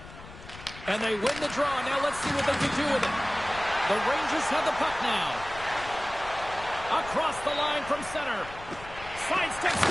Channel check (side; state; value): left; noise; rumble, 16 dB below the sound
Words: And they win the draw. Now let's see what they can do with it. The Rangers have the puck now. Across the line from center. Sidesteps